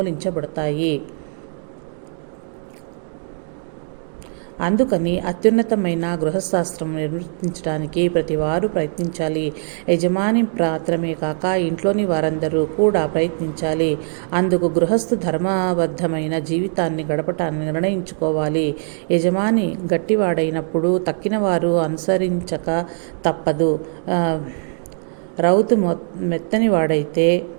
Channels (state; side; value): silent; left; digital silence